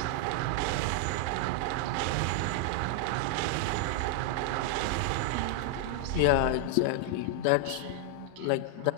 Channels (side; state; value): both; different; correlation 0.00